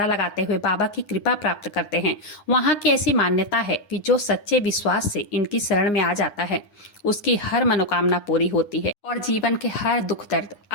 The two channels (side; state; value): right; late; 9.7 ms